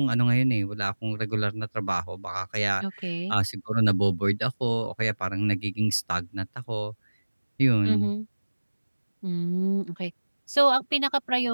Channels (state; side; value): inverted; both; correlation -1.00